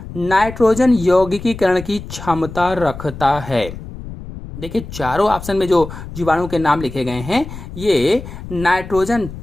नाइट्रोजन यौगिकीकरण की क्षमता रखता है? देखिए, चारों ऑप्शन में जो जीवाणु के नाम लिखे गए हैं ये नाइट्रोजन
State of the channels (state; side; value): noise; left; rumble, 12 dB below the sound